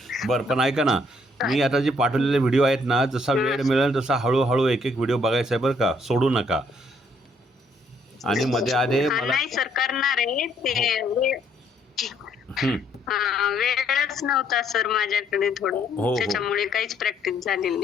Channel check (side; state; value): both; normal; correlation 0.68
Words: बरं, पण ऐका ना, मी आता जे पाठवलेले व्हिडिओ आहेत ना, जसा वेळ मिळेल तसा हळूहळू एक एक व्हिडिओ बघायचा आहे बरं का, सोडू नका. आणि मध्ये आधे मला नाही सर, करणार आहे ते. वेळच नव्हता सर माझ्याकडे थोडं, त्याच्यामुळे काहीच प्रॅक्टिस झालेली